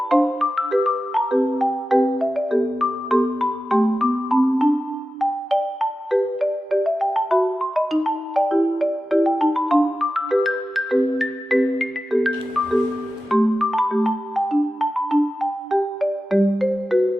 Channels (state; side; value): normal; both; correlation 0.93